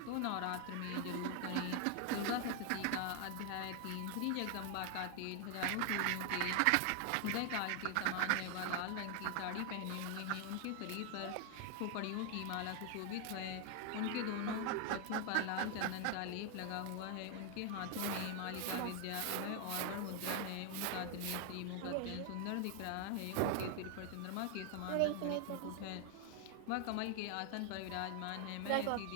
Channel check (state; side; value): different; both; correlation 0.00